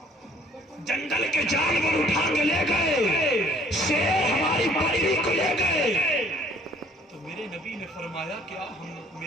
جنگل کے جانور اٹھا کے لے گئے، شیر ہماری بکری کو لے گئے۔ تو میرے نبی نے فرمایا کہ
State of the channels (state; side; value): normal; both; correlation 0.58